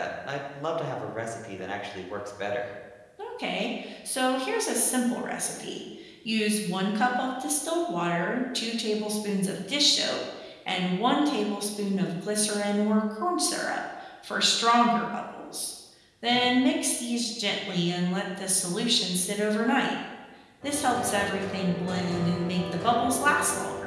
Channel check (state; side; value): identical; both; correlation 1.00